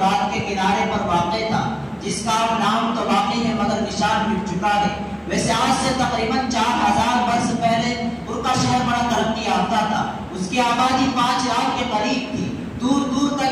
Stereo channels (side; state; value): both; identical; correlation 1.00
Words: کے کنارے پر واقع تھا، جس کا نام تو باقی ہے مگر نشان مٹ چکا ہے۔ ویسے آج سے تقریباً 4000 برس پہلے پر کا شہر بڑا ترقی یافتہ تھا، اس کی آبادی 5 لاکھ کے قریب تھی، دور دور